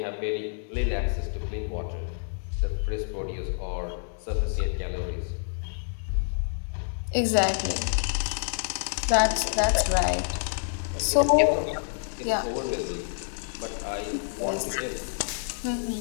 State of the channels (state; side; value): silent; right; digital silence